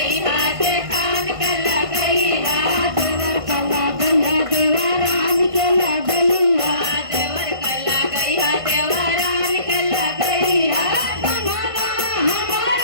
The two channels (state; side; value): late; left; 1.5 ms